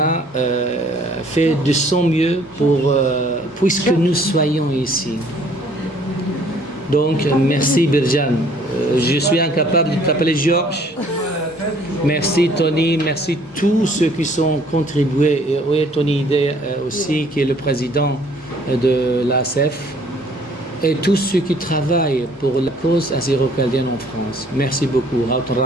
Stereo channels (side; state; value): both; normal; correlation 0.59